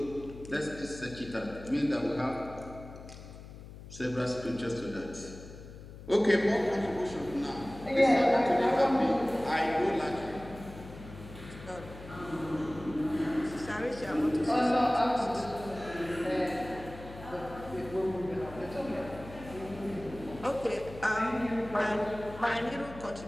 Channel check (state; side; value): noise; left; hum, 15 dB below the sound